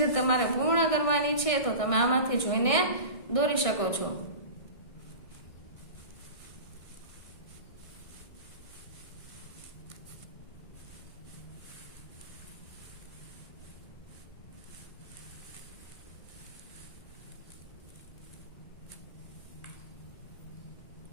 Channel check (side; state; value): right; late; 1.6 ms